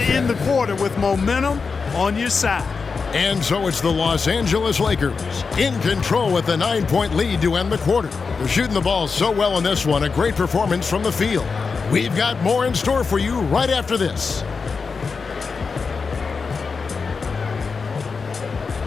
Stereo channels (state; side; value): quieter; right; 5.0 dB